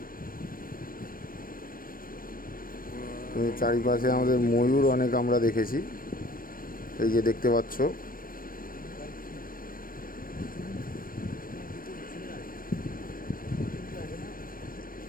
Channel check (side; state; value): right; late; 0.41 ms